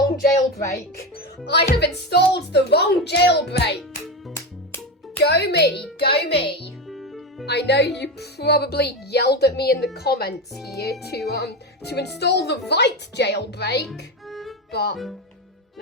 jailbreak. I have installed the wrong jailbreak. Go me, go me. I know you probably yelled at me in the comments here to install the right jailbreak, but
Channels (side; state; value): both; normal; correlation 0.18